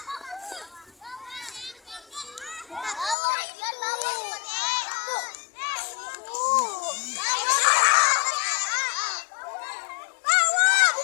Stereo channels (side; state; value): right; drops out; at 3.2 s